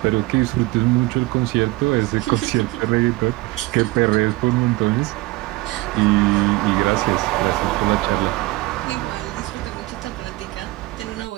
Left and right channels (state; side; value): quieter; left; 20.7 dB